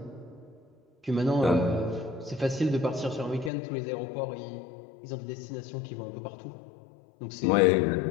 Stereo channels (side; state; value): right; drops out; at 3.5 s